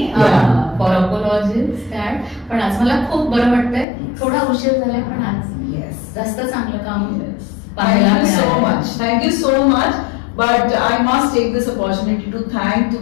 फॉर अपॉलॉजीज दॅट. पण आज मला खूप बरं वाटतंय, थोडा उशीर झालाय पण आज जास्त चांगलं काम पाहायला मिळालं. Thank you so much. But I must take this opportunity to thank,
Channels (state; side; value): drops out; right; at 3.9 s